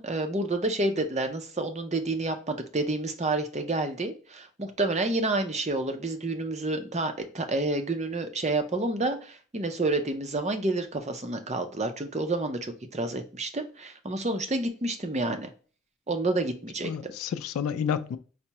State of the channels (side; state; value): both; normal; correlation 0.38